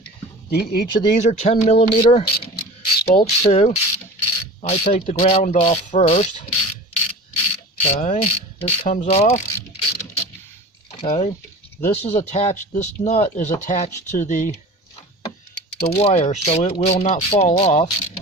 Each of these are 10mm bolts too. I take the ground off first. Okay, this comes off. Okay, this nut is attached to the wire, so it will not fall off.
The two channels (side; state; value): both; normal; correlation 0.37